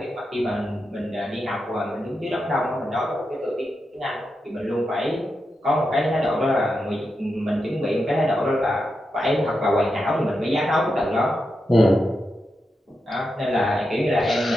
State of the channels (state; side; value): normal; both; correlation 0.87